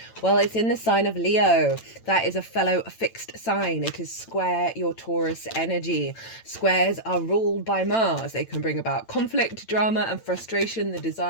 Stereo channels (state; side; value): late; right; 8.9 ms